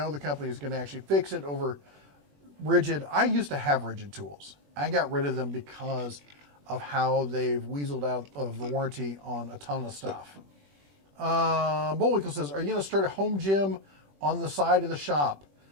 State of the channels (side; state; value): left; late; 21 ms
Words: the company is going to actually fix it over Rigid. I used to have Rigid tools. I got rid of them because of how they've weaseled out of the warranty on a ton of stuff. Bullwinkle says, are you going to start a home gym on the side of the shop?